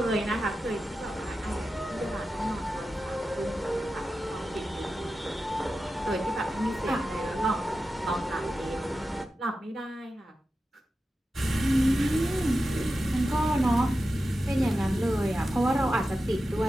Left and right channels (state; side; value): normal; both; correlation 0.92